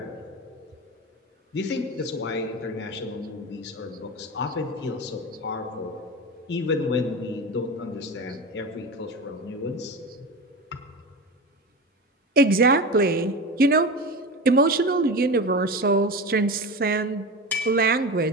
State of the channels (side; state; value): both; normal; correlation 0.25